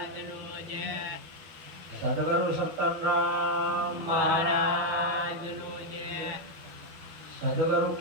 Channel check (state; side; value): late; left; 12 ms